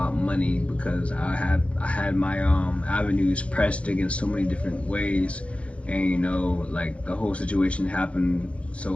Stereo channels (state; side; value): late; right; 0.062 ms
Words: money because I had my avenues pressed against so many different ways, and you know, like the whole situation happened,